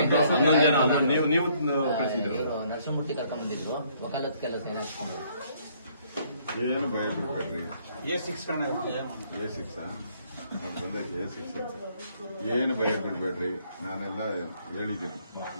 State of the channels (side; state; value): both; inverted; correlation -0.65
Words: ನೀವು ನರಸಿಂಹಮೂರ್ತಿ ಕರ್ಕೊಂಡ್ಬಂದಿದ್ರು, ವಕಾಲತ್ ಕೆಲಸ ಸೇರಿಸ್ಕೊಂಡು. ಏನು ಭಯ ಬಿಡ್ಬೇಡ್ರಿ. A6 ಏನು ಭಯ ಬಿಡ್ಬೇಡ್ರಿ. ನಾನೆಲ್ಲ ಹೇಳಿದ್ದೀನಿ.